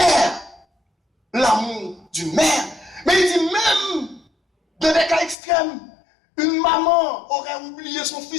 l'amour d'une mère. Mais il dit même, dans des cas extrêmes, une maman aurait oublié son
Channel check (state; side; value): drops out; right; at 5.4 s